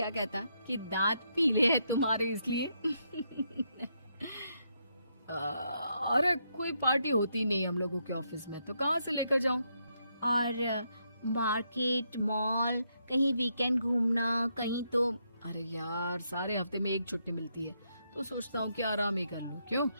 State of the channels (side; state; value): both; inverted; correlation -0.78